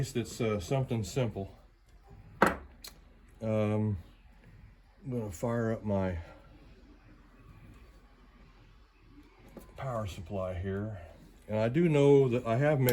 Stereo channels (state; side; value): identical; both; correlation 1.00